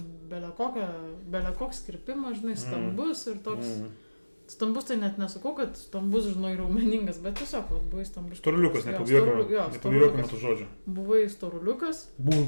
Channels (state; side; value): inverted; both; correlation -1.00